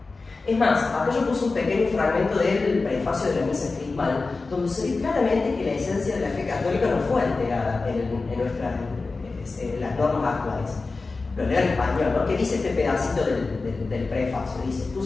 Es más, acá yo puse un pequeño fragmento del prefacio de la misa crismal, donde se ve claramente que la esencia de la fe católica no fue alterada en las normas actuales. Lo leo en español, ¿no? ¿Qué dice este pedacito del prefacio? Dice,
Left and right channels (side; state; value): right; quieter; 3.8 dB